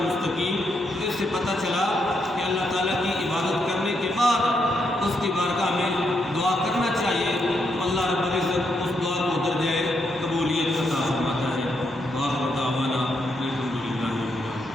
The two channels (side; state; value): both; normal; correlation 0.79